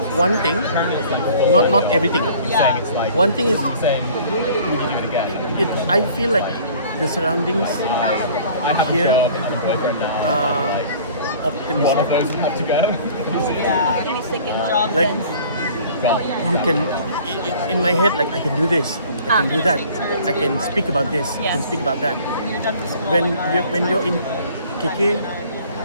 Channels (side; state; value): both; inverted; correlation -0.50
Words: one thing, not everything. Yeah. It's like One thing is, saying, would you do it again? I feel like the surroundings I have Here? a job and I'm a boyfriend now. are One of optimistic. those would have to go. Yeah. optimistic in what Job Like sense. Well, you can, in my head, like I can do this, I can do that, I can speak about this, I can Yes. speak about that. You're done for school. When you're in KK,